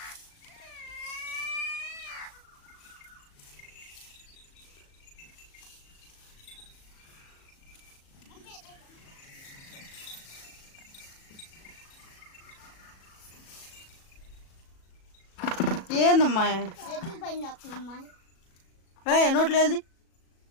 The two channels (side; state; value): right; late; 37 ms